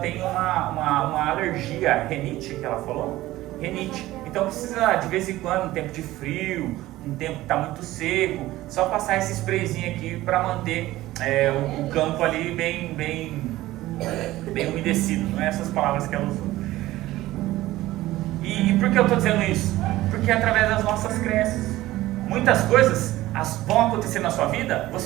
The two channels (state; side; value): quieter; left; 16.6 dB